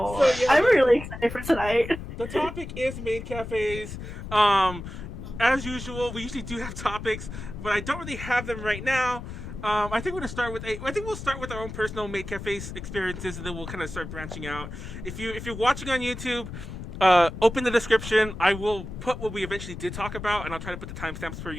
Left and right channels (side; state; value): left; noise; rumble, 9 dB below the sound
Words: So, yeah, I'm really excited for tonight. The topic is maid cafes. As usual, we usually do have topics, but I don't really have them right now. I think we're gonna start with I think we'll start with our own personal maid cafes experiences, and then we'll kind of start branching out. If you're watching on YouTube, open the description. I will put what we eventually did talk about, and I'll try to put the timestamps per